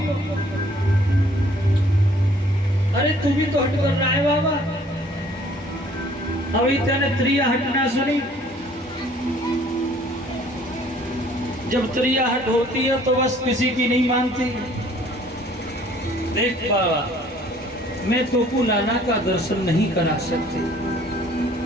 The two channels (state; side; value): normal; both; correlation 0.57